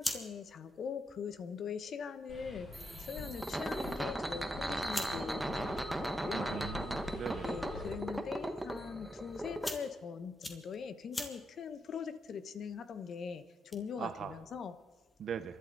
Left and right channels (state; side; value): normal; both; correlation 0.82